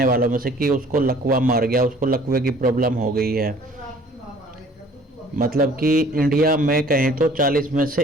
वालों में से कि उसको लकवा मार गया, उसको लकवे की प्रॉब्लम हो गई है। मतलब कि इंडिया में कहें तो 40 में से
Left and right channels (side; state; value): both; normal; correlation 0.53